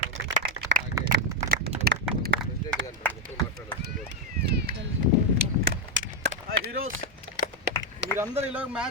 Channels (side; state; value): both; normal; correlation 0.04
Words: హీరోస్, మీరందరూ ఇలా